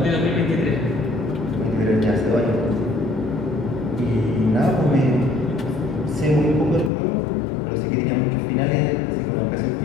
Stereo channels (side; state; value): right; drops out; at 6.9 s